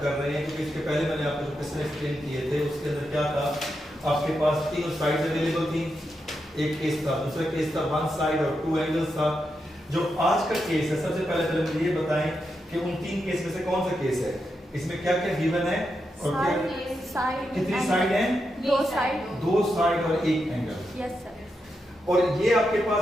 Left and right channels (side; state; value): both; normal; correlation 0.85